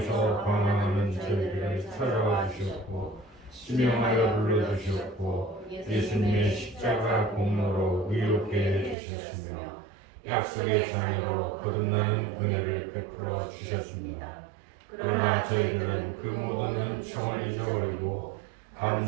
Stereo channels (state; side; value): drops out; left; at 9.0 s